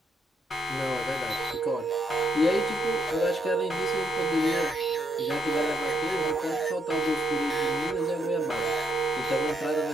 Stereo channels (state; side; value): normal; both; correlation 0.76